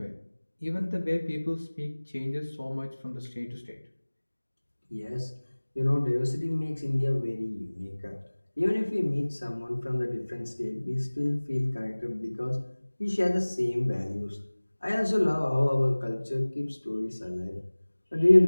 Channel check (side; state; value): both; inverted; correlation -1.00